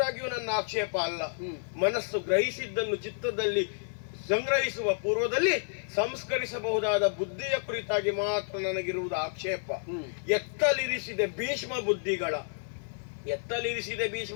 ನನ್ನ ಆಕ್ಷೇಪ ಅಲ್ಲ. ಮನಸ್ಸು ಗ್ರಹಿಸಿದ್ದನ್ನು ಚಿತ್ತದಲ್ಲಿ ಸಂಗ್ರಹಿಸುವ ಪೂರ್ವದಲ್ಲಿ ಸಂಸ್ಕರಿಸಬಹುದಾದ ಬುದ್ಧಿಯ ಕುರಿತಾಗಿ ಮಾತ್ರ ನನಗಿರುವುದು ಆಕ್ಷೇಪ. ಎತ್ತಲಿರಿಸಿದೆ ಭೀಷ್ಮ ಬುದ್ಧಿಗಳ, ಎತ್ತಲಿರಿಸಿದೆ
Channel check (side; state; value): right; silent; 58 dB below the other